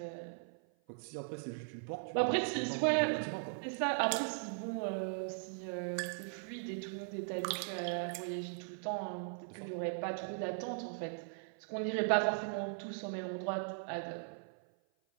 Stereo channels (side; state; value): left; silent; 52 dB below the other